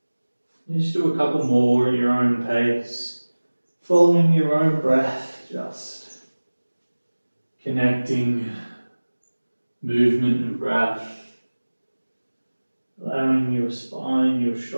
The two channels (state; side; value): inverted; both; correlation -1.00